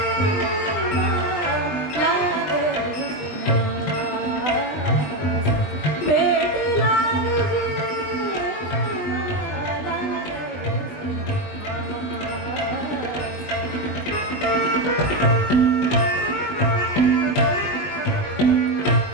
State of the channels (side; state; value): right; late; 20 ms